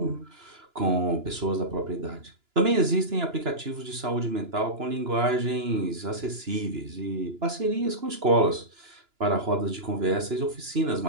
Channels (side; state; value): left; late; 2.9 ms